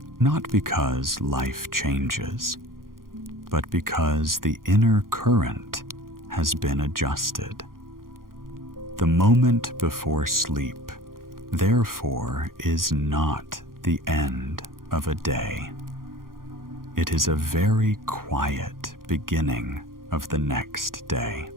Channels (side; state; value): left; late; 0.91 ms